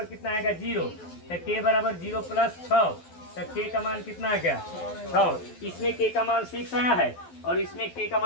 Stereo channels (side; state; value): right; late; 12 ms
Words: कितना आएगा 0, तो k बराबर 0 प्लस 6, तो k का मान कितना आ गया 6। इसमें k का मान 6 आया है और इसमें k का